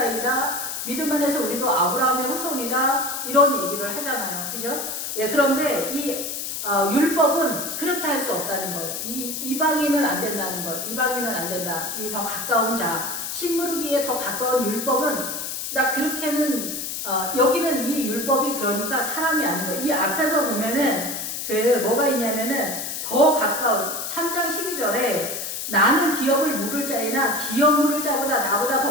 믿음 안에서 우리도 아브라함의 후손이다, 이런 얘기를 하잖아요. 그죠? 예, 그런데 이 율법은 그렇게 할 수 없다는 거예요. 이방인은 안 된다는 거예요. 이방인은 안 된다. 이 더 가까운 자, 신무르기에 더 가까운 율법은 나 그렇게는 여기는 이 율법이 그러니까 사람이 아닌 거예요. 이 앞에서 보면은 그 뭐가 있냐면은 더 가까운 3장 12절에 나는 기업을 물을 자이나 기업 물을 자보다 나보다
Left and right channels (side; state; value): left; noise; hiss, 5 dB below the sound